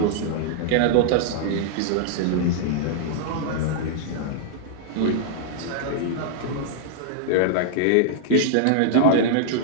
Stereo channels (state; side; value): different; both; correlation -0.01